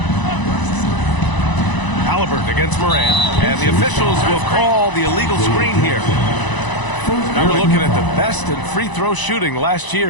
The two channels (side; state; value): right; late; 1.0 ms